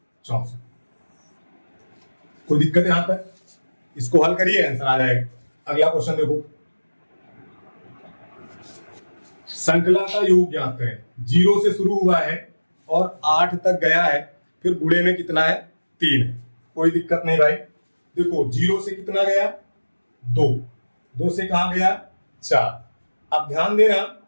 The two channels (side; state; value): both; inverted; correlation -1.00